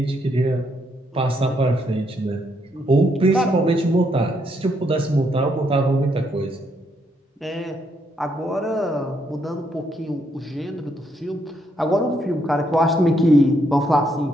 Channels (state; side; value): normal; both; correlation 0.75